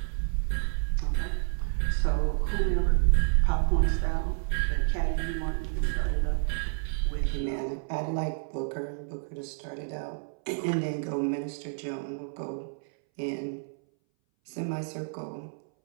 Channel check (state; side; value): silent; left; 58 dB below the other